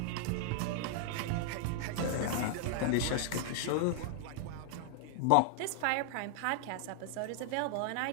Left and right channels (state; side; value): different; both; correlation 0.00